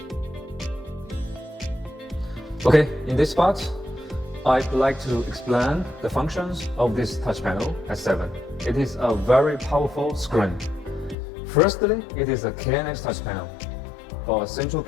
Okay, in this part, I'd like to explain the functions of this touch panel S7. It is a very powerful screen. Firstly, it is a KNX touch panel for central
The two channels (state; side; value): drops out; right; at 11.2 s